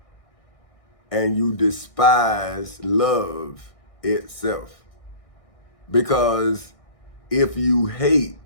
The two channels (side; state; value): right; late; 1.6 ms